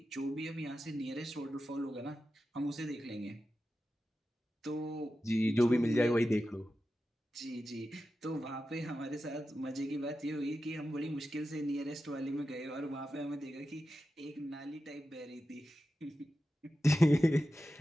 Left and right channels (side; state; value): both; normal; correlation 0.92